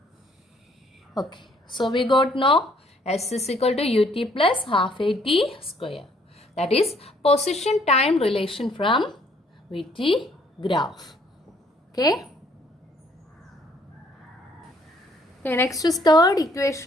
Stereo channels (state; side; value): normal; both; correlation 0.64